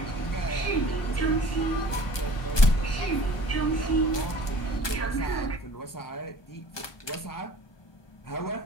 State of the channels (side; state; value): right; late; 1.2 ms